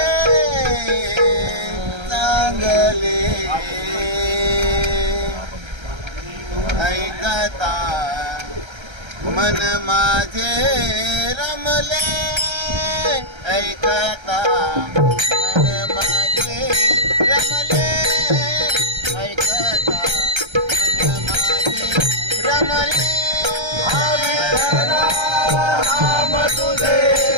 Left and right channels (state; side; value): late; left; 1.3 ms